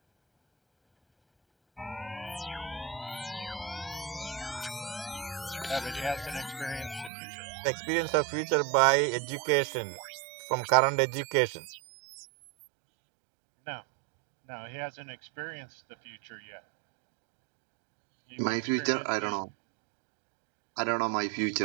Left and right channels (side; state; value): left; drops out; at 7.1 s